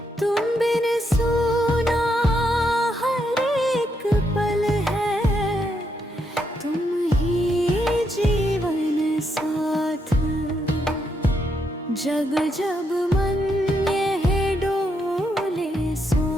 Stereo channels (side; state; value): both; normal; correlation 0.78